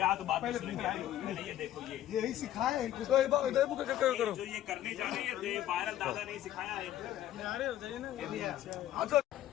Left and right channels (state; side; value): quieter; right; 12.7 dB